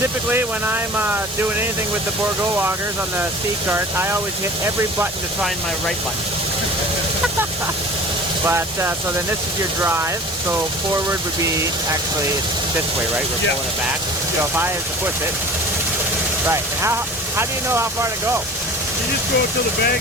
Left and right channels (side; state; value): both; normal; correlation 0.41